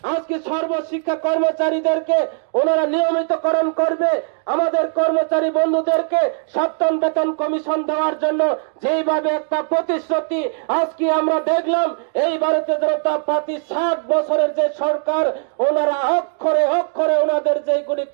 আজকে সর্বশিক্ষা কর্মচারীদেরকে ওনারা নিয়মিতকরণ করবে। আমাদের কর্মচারী বন্ধুদেরকে সপ্তম বেতন কমিশন দেওয়ার জন্য যেইভাবে একটা প্রতিশ্রুতি আজকে আমরা দেখলাম, এই ভারতীয় জনতা পার্টি 60 বছরের যে সরকার, ওনারা অক্ষরে অক্ষরে ওনাদের যেগুলি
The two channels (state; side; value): silent; left; digital silence